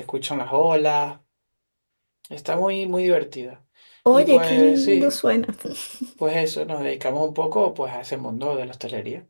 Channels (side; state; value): both; inverted; correlation -1.00